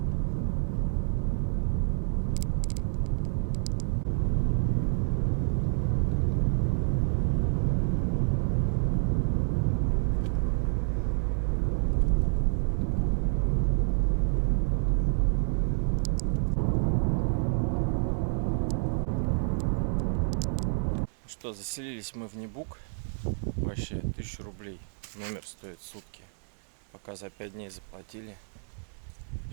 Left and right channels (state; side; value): silent; left; digital silence